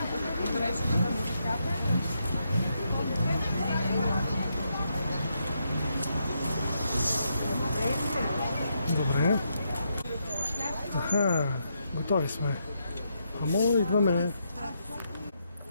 подреждате на музиката. Добре. Аха, готови сме. Амо, идваме.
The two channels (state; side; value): inverted; both; correlation -0.80